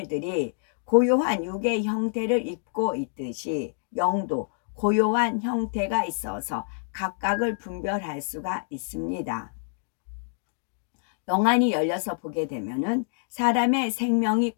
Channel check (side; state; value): right; silent; digital silence